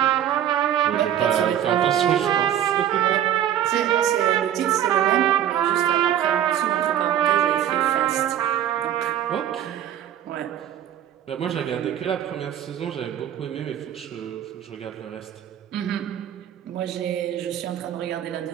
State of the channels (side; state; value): left; quieter; 10.7 dB